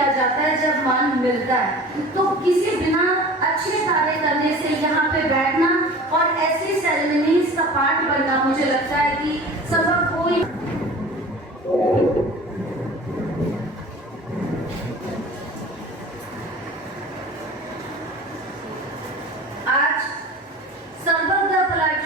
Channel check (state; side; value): normal; both; correlation 0.40